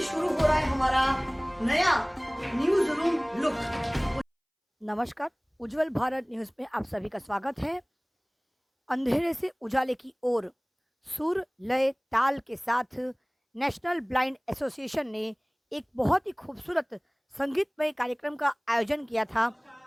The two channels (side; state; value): both; identical; correlation 1.00